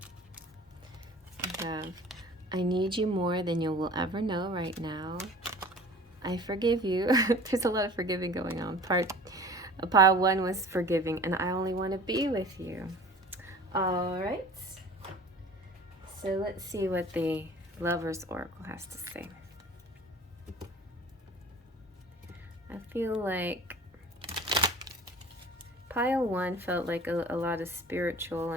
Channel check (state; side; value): normal; both; correlation 0.44